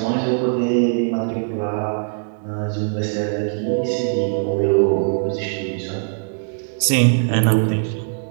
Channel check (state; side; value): silent; left; digital silence